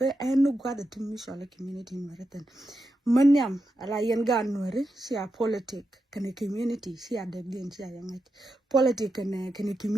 enu gwada timishala community nuääri ten manyam ala yen ga nuääri si a politic kane community si a debden si a yangai politic kane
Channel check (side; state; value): both; normal; correlation 0.87